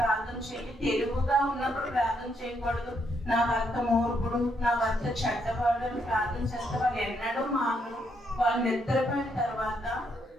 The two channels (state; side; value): normal; both; correlation 0.75